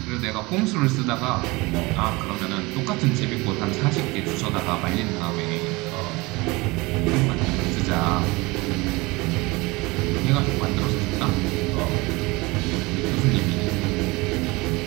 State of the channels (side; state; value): left; quieter; 23.8 dB